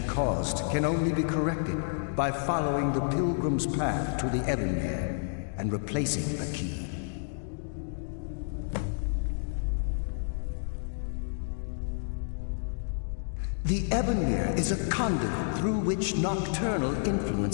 caused can only be corrected by following the Pilgrim's path to the Ebonmere and replacing the key. The Ebonmere is a conduit through which Nocturnal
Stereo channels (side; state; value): right; silent; digital silence